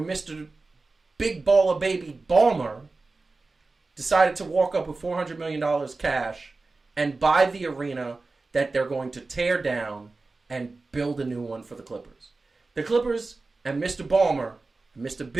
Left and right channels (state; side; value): quieter; left; 3.6 dB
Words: Mr. Big Baller Baby Balmer decided to walk up with $400 million cash and buy the arena that they're going to tear down and build a new one for the Clippers. The Clippers and Mr. Balmer, and Mr.